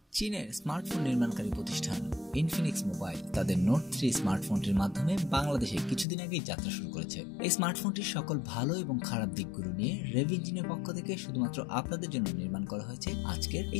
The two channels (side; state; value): right; drops out; at 6.1 s